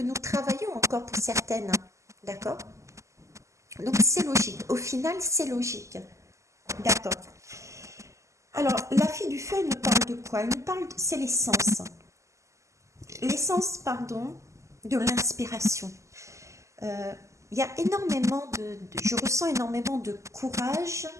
nous travaillons encore pour certaines. D'accord? Donc c'est logique. Au final, c'est logique. D'accord. Alors, la fille du feu, elle nous parle de quoi? Elle nous parle, c'est l'essence. L'essence, pardon, de l'inspiration. Il y a énormément je ressens énormément de courage,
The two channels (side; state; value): left; late; 0.15 ms